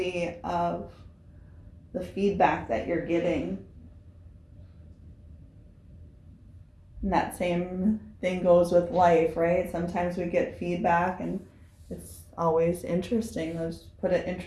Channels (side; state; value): both; identical; correlation 1.00